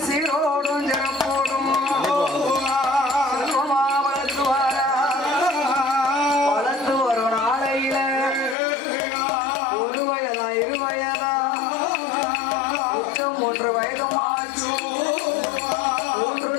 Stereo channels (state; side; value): drops out; right; at 8.6 s